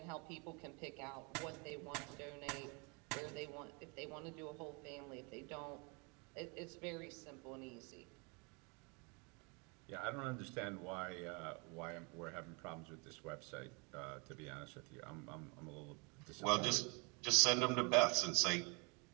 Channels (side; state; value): left; quieter; 32.0 dB